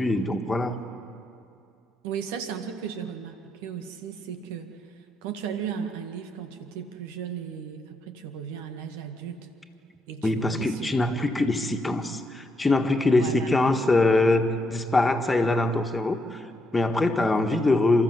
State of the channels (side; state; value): both; normal; correlation 0.79